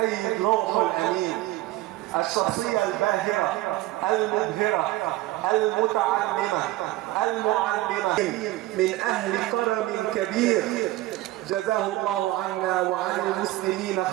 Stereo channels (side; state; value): left; quieter; 17.0 dB